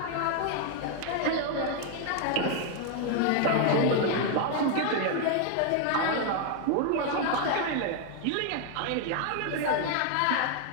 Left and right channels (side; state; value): both; different; correlation 0.00